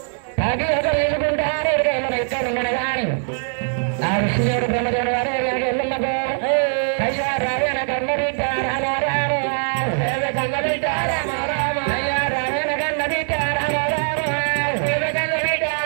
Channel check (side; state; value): left; silent; 59 dB below the other